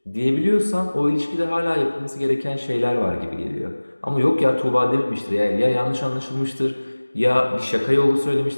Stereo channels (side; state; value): both; inverted; correlation -1.00